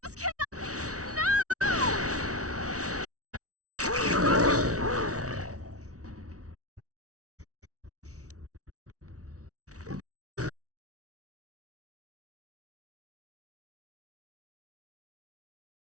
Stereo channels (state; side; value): late; left; 0.66 ms